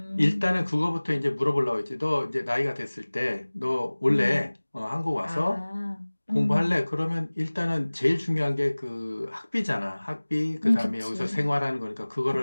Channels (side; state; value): both; inverted; correlation -1.00